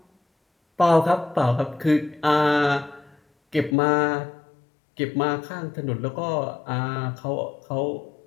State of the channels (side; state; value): right; drops out; at 3.8 s